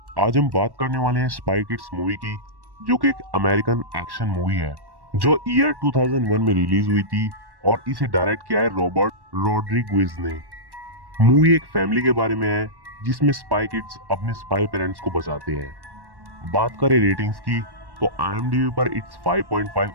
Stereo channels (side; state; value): left; late; 1.1 ms